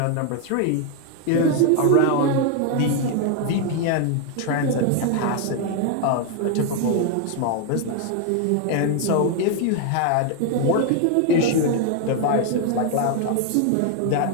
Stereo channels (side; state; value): both; different; correlation 0.01